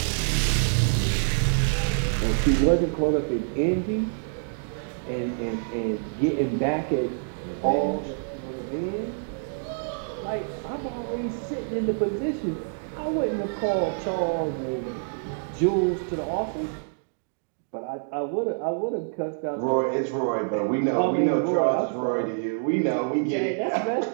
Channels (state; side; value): silent; left; digital silence